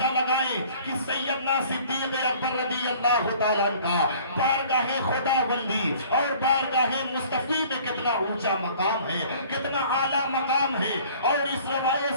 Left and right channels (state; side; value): inverted; both; correlation -0.51